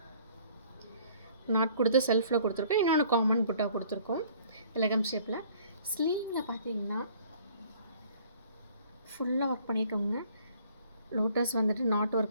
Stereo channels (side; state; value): both; inverted; correlation -0.56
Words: நாட் கொடுத்து செல்ஃபில் கொடுத்துருக்கோம். இன்னொன்று காமன் புட்டா கொடுத்துருக்கோம் எலகம் ஷேப்பில். ஸ்லீவில் பார்த்தீங்கன்னா ஃபுல்லாக ஒர்க் பண்ணியிருக்கோங்க. லோட்டஸ் வந்துட்டு நாட்